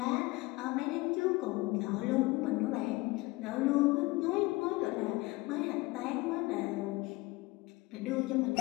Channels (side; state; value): right; quieter; 21.8 dB